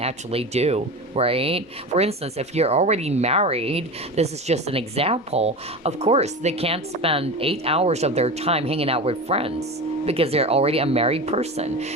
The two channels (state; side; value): normal; both; correlation 0.27